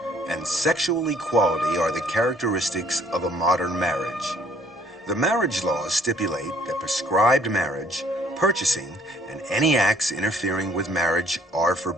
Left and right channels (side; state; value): both; normal; correlation 0.60